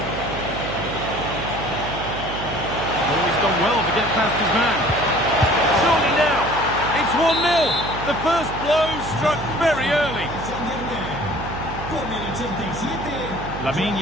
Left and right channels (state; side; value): noise; right; hum, 9 dB below the sound